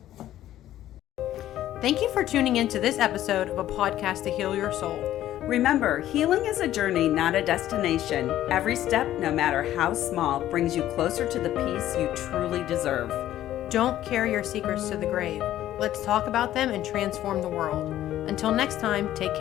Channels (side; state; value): right; quieter; 13.0 dB